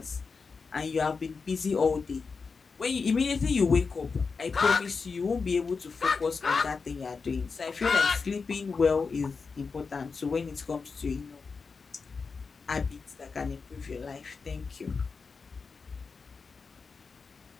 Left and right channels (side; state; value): right; quieter; 4.9 dB